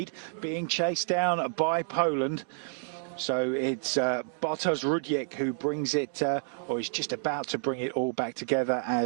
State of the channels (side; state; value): left; silent; digital silence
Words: being chased down by Poland. So it's Bartosz Rudiek who brings it, or is just about to bring it all back together